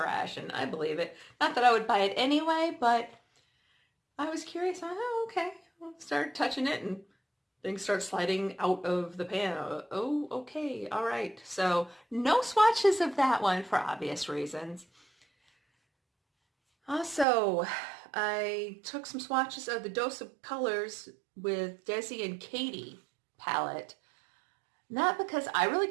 and I believe it. Not that I would buy it anyway, but I was curious. Oh, okay. I'll start touching it and things start sliding out of the pan. Oh, okay. All right. So no swatches of that one for obvious reasons. Also, I took some swatches of the Dose of Colors with Desi and Katie palette. Not because I really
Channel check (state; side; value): drops out; left; at 17.2 s